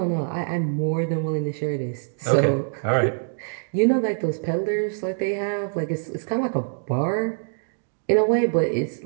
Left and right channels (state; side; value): silent; left; digital silence